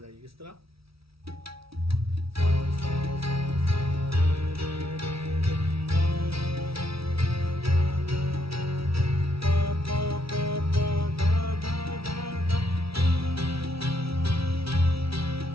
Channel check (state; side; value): late; left; 0.76 ms